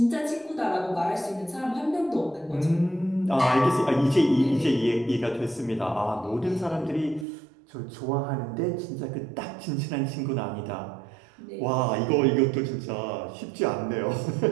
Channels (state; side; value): drops out; left; at 7.2 s